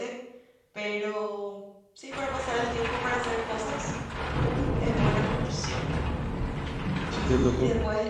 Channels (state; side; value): identical; both; correlation 1.00